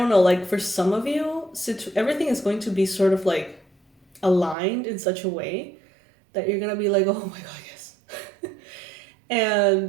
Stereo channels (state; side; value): drops out; left; at 4.5 s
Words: know, like for some of you, everything is going to be sort of like aligned in such a way that you're going to be like, oh my God, yes. And